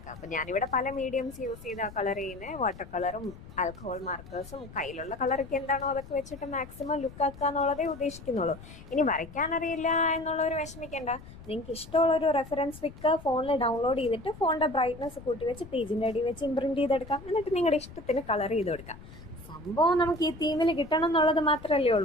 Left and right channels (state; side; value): noise; left; rumble, 17 dB below the sound